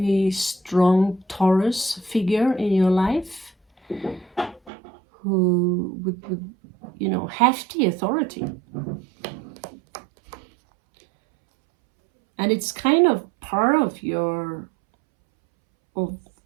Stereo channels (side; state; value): left; drops out; at 4.7 s